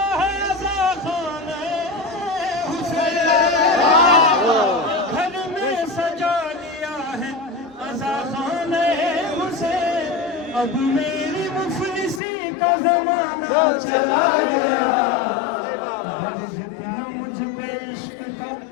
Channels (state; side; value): drops out; right; at 12.2 s